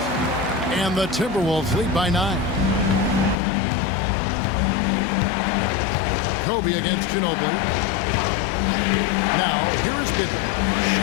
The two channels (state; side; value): drops out; right; at 3.4 s